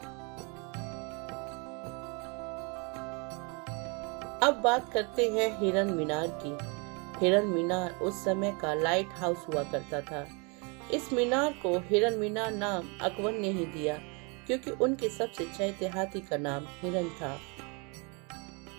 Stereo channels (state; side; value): quieter; left; 32.3 dB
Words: अब बात करते हैं हिरन मीनार की। हिरन मीनार उस समय का लाइट हाउस हुआ करता था। इस मीनार को हिरन मीनार नाम अकबर ने ही दिया, क्योंकि उनके सबसे चहेते हाथी का नाम हिरन था।